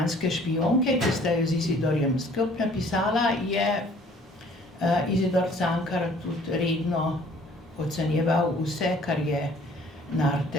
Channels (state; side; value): normal; both; correlation 0.56